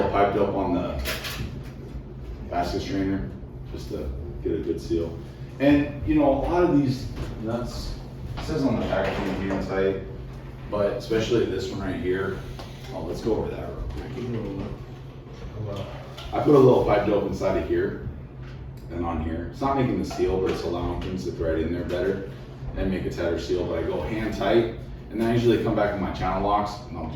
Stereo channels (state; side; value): identical; both; correlation 1.00